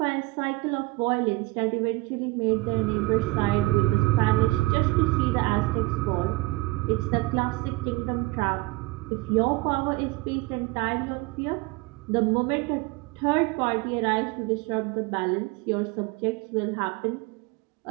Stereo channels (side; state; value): left; quieter; 22.1 dB